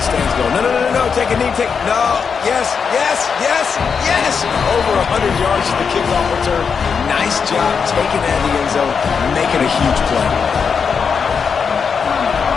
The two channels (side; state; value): right; quieter; 6.1 dB